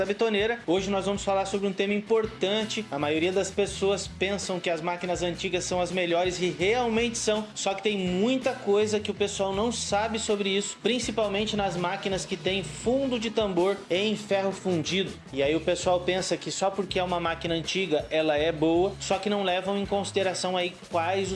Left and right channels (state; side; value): identical; both; correlation 1.00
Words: Betoneira. Hoje nós vamos falar sobre um tema importante. A maioria das pessoas pensam que as máquinas antigas são as melhores e realmente são, só que tem muita coisa que o pessoal não sabe sobre isso, principalmente nas máquinas que tem fundo de tambor em ferro fundido. E aí o pessoal pensa que só porque é uma máquina antiga ela é boa, só que não levam em consideração aí quais